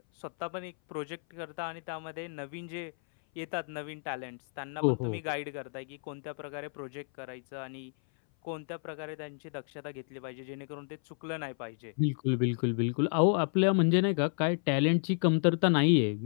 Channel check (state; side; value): silent; right; 57 dB below the other